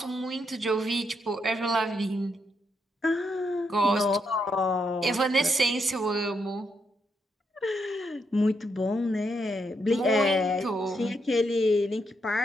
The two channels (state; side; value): normal; both; correlation 0.79